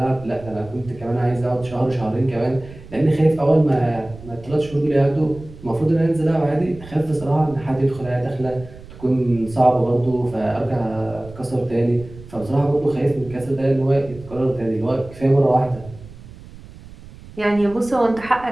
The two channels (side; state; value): right; noise; rumble, 18 dB below the sound